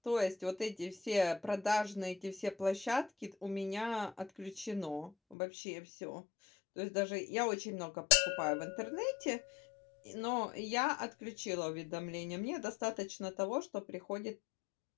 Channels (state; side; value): drops out; right; at 5.4 s